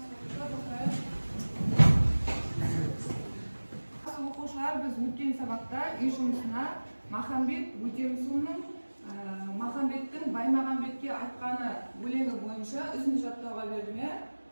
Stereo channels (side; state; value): both; inverted; correlation -1.00